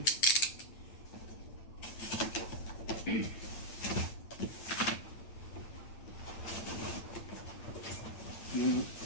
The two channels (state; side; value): late; right; 8.9 ms